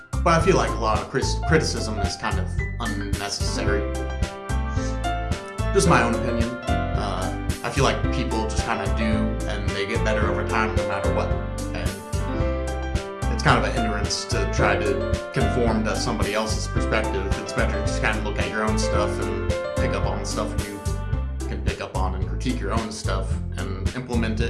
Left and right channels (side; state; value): both; identical; correlation 1.00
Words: But I feel like a lot of criticism is kind of unnecessary. Just my own opinion. I feel like people just kind of do, and they get better over time no matter what. And it's kind of a hindrance to try to conform to somebody else's perspective. It's better to just kind of look at your own stuff and pick up on the stuff you can pick up on and critique your own stuff and implement